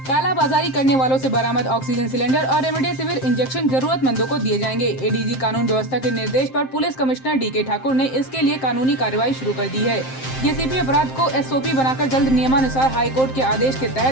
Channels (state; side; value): late; right; 7.6 ms